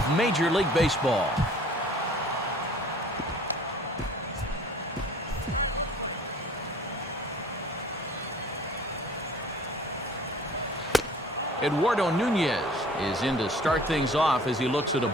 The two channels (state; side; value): normal; both; correlation 0.50